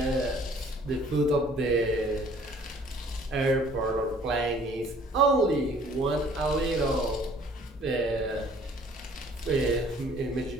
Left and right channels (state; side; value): normal; both; correlation 0.56